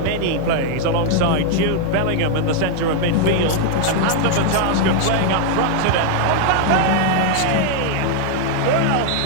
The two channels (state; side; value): different; both; correlation 0.00